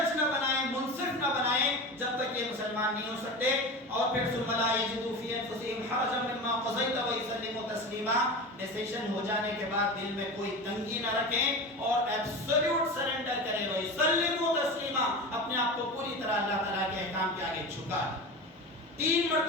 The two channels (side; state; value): both; normal; correlation 0.28